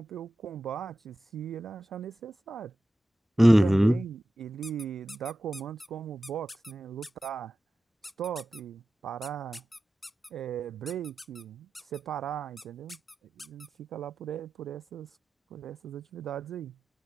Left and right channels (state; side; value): normal; both; correlation 0.93